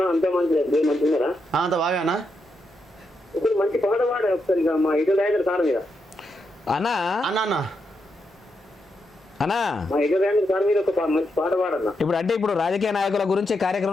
అంతే మంచిది, మంచిగా అంత బాగా అన్న. ఇప్పుడు మంచి పాట పాడే ఒకసారి ఇక మా ఇటు రాయగర్ సార్ మీద. అన్నా అన్న అన్న అన్నా మా ఇటు రాయగర్ సార్ మీద ఒక మంచి పాట పాడన్నా. ఇప్పుడు రాజకీయ నాయకుల గురించి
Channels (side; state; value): both; normal; correlation 0.83